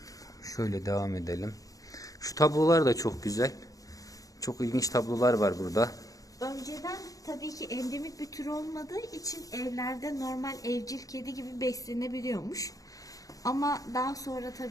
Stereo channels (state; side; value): late; right; 0.17 ms